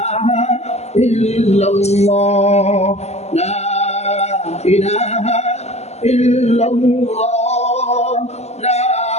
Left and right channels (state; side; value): late; right; 0.32 ms